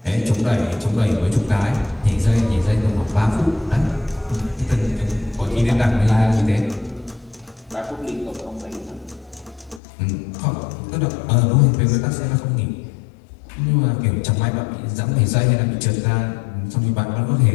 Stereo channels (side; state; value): right; drops out; at 9.8 s